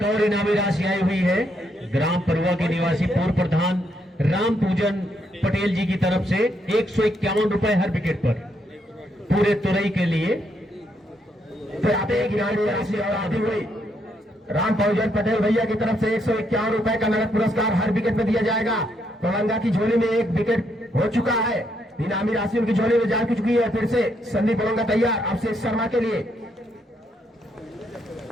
और इनामी राशि आई हुई है ग्राम परुआ के निवासी पूर्व प्रधान राम पूजन पटेल जी की तरफ से 151 रुपए हर विकेट पर पूरे तुरई के लिए। फिर आते एक इनामी राशि और आती हुई राम पूजन पटेल भैया की तरफ से 151 रुपए का नगद पुरस्कार हर विकेट में दिया जाएगा। ओलंगा की झोली में 1 विकेट हो चुका है, इनामी राशि उनकी झोली में जा चुकी है। फिर से संदीप ओलंगा तैयार अभिषेक शर्मा के लिए।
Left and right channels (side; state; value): both; normal; correlation 0.76